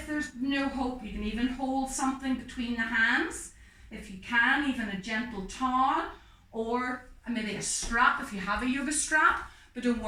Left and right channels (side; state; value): both; identical; correlation 1.00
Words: there's no hope. You can even hold something between the hands. If you can, even a gentle towel or maybe a strap if you have a yoga strap, but don't